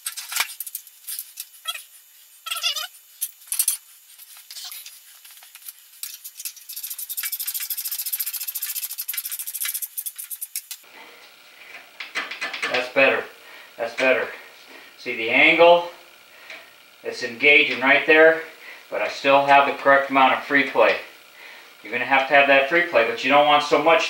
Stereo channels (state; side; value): identical; both; correlation 1.00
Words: That's better. That's better. See the angle? It's engaging right there, but I still have the correct amount of free play. You're going to have that free play, but you don't want so